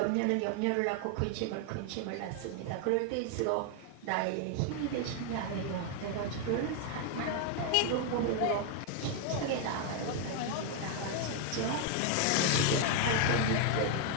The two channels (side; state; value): both; different; correlation 0.00